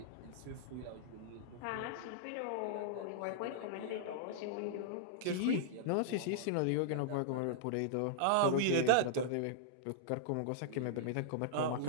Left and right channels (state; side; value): different; both; correlation -0.02